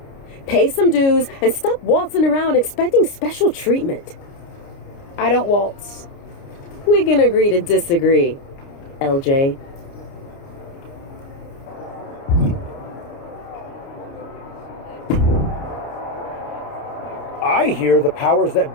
Pay some dues and stop waltzing around expecting special treatment. I don't waltz. We can agree to disagree, LJ. I hear the powers that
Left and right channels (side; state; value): right; late; 29 ms